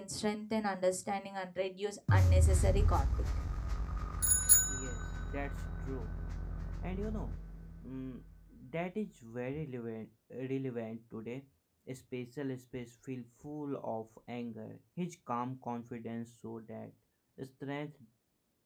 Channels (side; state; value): both; identical; correlation 1.00